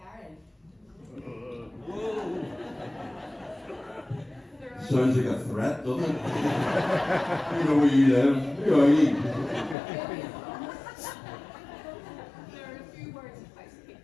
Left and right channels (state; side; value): drops out; right; at 9.8 s